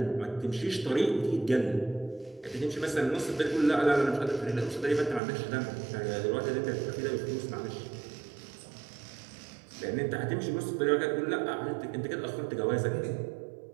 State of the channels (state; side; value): drops out; left; at 5.2 s